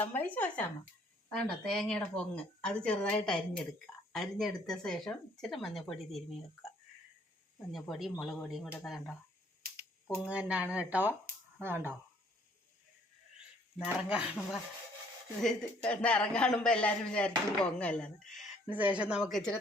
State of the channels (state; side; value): normal; both; correlation 0.61